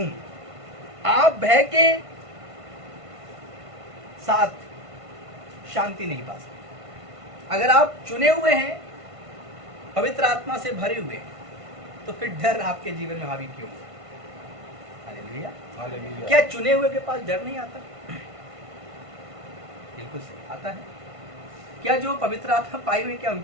आप भय के साथ शांति नहीं पा सकते। अगर आप चुने हुए हैं, पवित्र आत्मा से भरे हुए हैं, तो फिर डर आपके जीवन में हावी क्यों? हालेलुया। हालेलुया। क्या चुने हुए के पास डर नहीं आता? बिल्कुल सही, आता है। क्या जो पवित्र आत्मा पाए हुए, क्या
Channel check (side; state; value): left; late; 1.5 ms